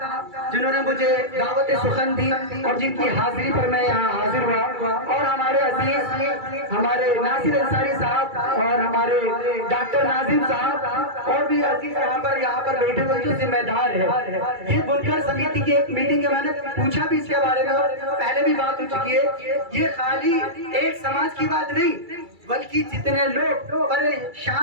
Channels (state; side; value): late; left; 2.3 ms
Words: जिन्होंने मुझे दावत सुखन दी और जिनकी हाजिरी पर मैं यहाँ हाजिर हुआ। और हमारे अजीज हमारे नासिर अंसारी साहब और हमारे डॉक्टर नाजिम साहब और भी अजीज यहाँ पर बैठे हुए जो जिम्मेदार है। ये बुनकर समिति की एक मीटिंग है, मैंने पूछा भी इसके बारे में और पहले भी बात हो चुकी है। ये खाली एक समाज की बात नहीं, बल्कि जितने लोग